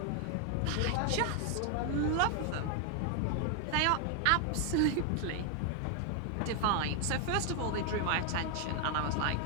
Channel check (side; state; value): both; different; correlation 0.00